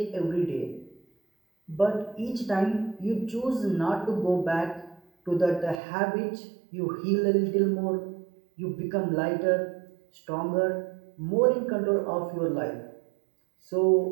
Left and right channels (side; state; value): left; drops out; at 5.8 s